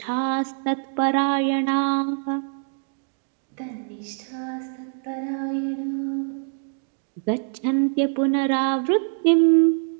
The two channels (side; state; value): left; silent; digital silence